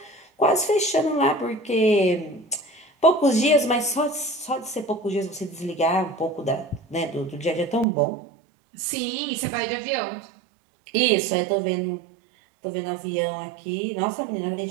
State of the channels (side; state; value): left; drops out; at 7.9 s